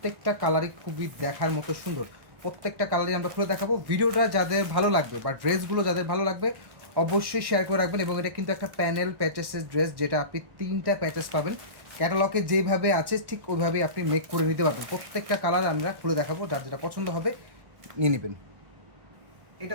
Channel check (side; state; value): left; late; 1.1 ms